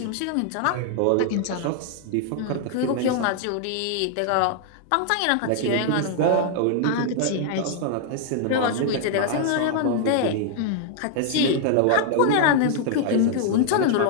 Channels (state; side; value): different; both; correlation 0.00